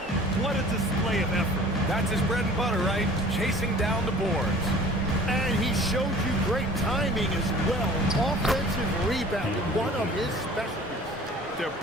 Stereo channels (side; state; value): both; normal; correlation 0.47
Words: What a display of effort. That's his bread and butter, right? Chasing down the boards. And he showed you great timing as well. Offensive rebounding, one of his specialties. They're